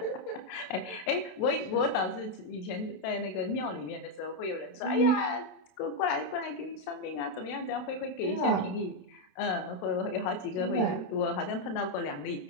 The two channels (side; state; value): right; late; 28 ms